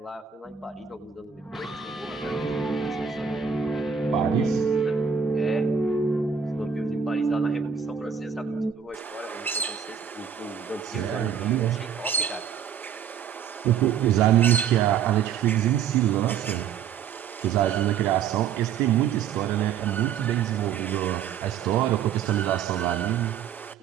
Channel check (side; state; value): left; quieter; 7.7 dB